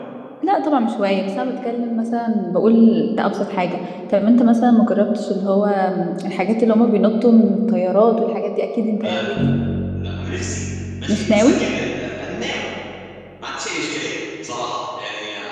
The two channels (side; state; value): both; identical; correlation 1.00